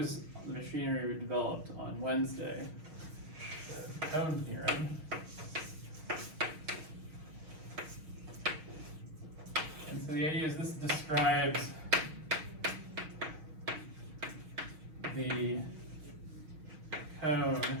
the machinery we developed on Wednesday. The cone theorem. And so the idea is this describes the cone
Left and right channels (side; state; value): left; late; 6.4 ms